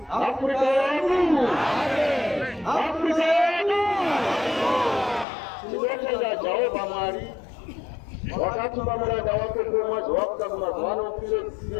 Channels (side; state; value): right; drops out; at 5.2 s